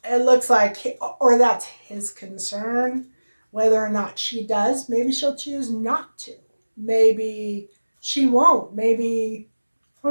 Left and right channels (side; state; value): both; inverted; correlation -1.00